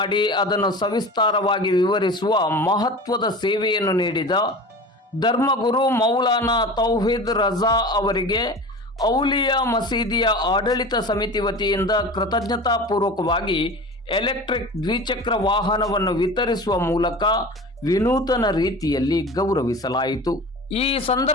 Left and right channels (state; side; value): normal; both; correlation 0.35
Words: ಅದನ್ನು ಸವಿಸ್ತಾರವಾಗಿ ವಿವರಿಸುವ ಮಹತ್ವದ ಸೇವೆಯನ್ನು ನೀಡಿದ ಧರ್ಮಗುರು ಮೌಲಾನಾ ತೌಹೀದ್ ರಜಾ ಅವರಿಗೆ ಔಲಿಯಾ ಮಸೀದಿಯ ಆಡಳಿತ ಸಮಿತಿ ವತಿಯಿಂದ ಕೃತಜ್ಞತಾಪೂರ್ವಕವಾಗಿ ಎಲೆಕ್ಟ್ರಿಕ್ ದ್ವಿಚಕ್ರ ವಾಹನವನ್ನು ವಿತರಿಸುವ ಮೂಲಕ ವಿನೂತನ ರೀತಿಯಲ್ಲಿ ಗೌರವಿಸಲಾಯಿತು. ಈ